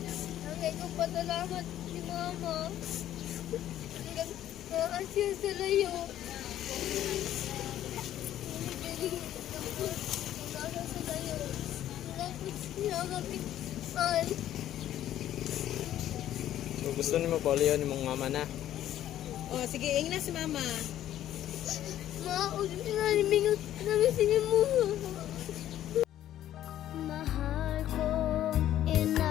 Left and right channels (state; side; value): quieter; right; 12.2 dB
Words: Nangay ko patalamat si mama. Nag-aasya sa layo. Nag-aasya sa layo. Tapos niya kapitay. So, gusto niyo paulihan ni mong mama na. Oh, sige, ingin na si mama. Maud na limingot namin sa inyo mo. Mahal ko,